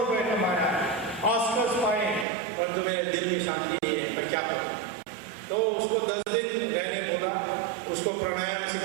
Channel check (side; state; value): left; drops out; at 2.2 s